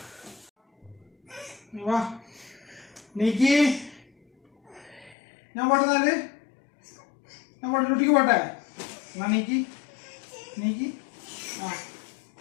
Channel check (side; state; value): right; drops out; at 5.2 s